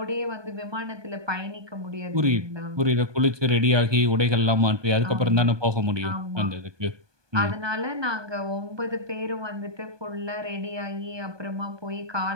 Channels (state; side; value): late; left; 1.2 ms